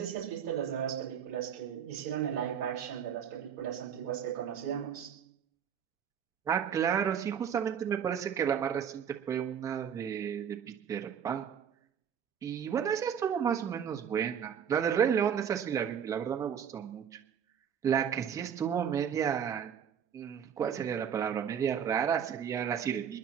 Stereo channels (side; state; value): left; quieter; 8.2 dB